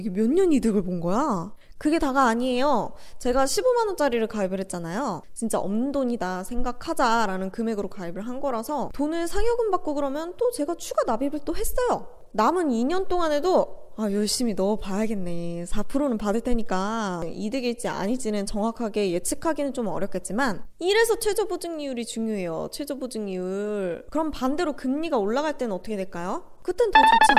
몇 년 이득을 본 거야? 그게 다가 아니에요. 제가 15만 원짜리를 가입을 했잖아요. 진짜 없는 돈이다 생각하자라는 금액으로 가입을 한 거라서 돈을 상여금 받고 그러면 또 제가 추가 납입을 또 했어요. 남은 2년 동안에도 열심히 넣어봐야겠네. 4%는 받을 테니까 이득일지 아닐지는 정확하게 예측하기는 좀 어렵겠지만 이래서 최저보증이율이 중요해요. 최저보증이율. 그럼 반대로 금리가 올라갈 때는 어떻게 될까요? 그땐 더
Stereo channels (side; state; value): both; identical; correlation 1.00